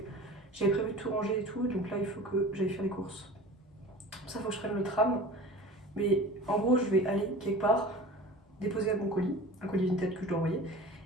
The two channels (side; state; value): both; normal; correlation 0.38